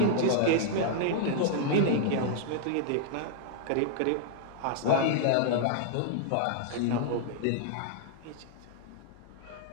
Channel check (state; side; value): different; both; correlation -0.01